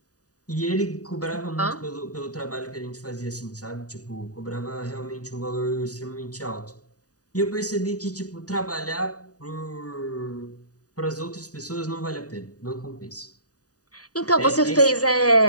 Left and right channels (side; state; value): right; late; 0.68 ms